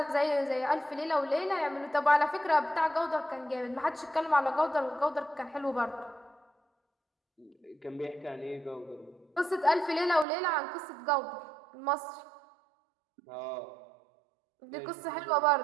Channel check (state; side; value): drops out; left; at 10.2 s